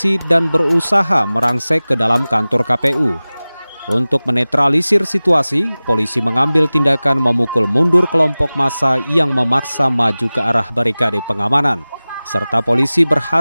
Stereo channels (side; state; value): both; inverted; correlation -0.98